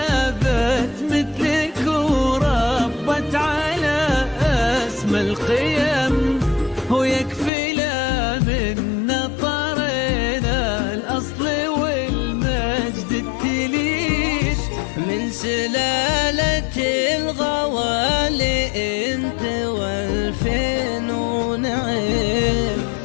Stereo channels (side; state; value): right; drops out; at 7.5 s